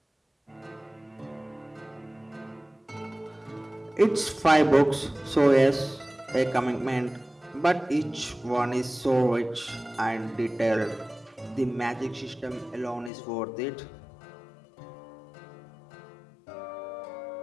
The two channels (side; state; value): right; drops out; at 13.1 s